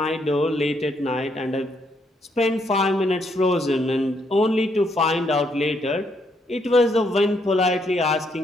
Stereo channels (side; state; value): both; normal; correlation 0.74